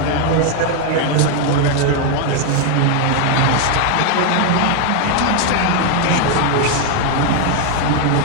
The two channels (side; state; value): both; different; correlation 0.01